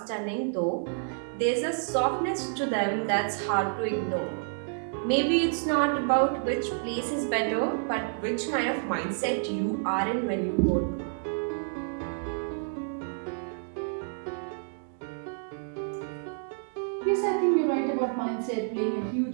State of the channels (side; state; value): left; silent; digital silence